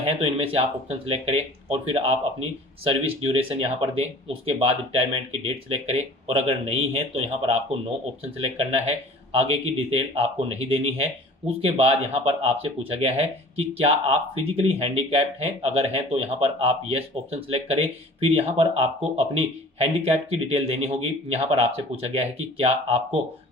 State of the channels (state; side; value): normal; both; correlation 0.46